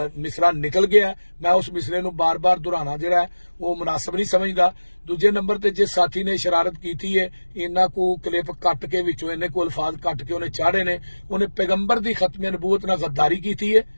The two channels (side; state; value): both; inverted; correlation -1.00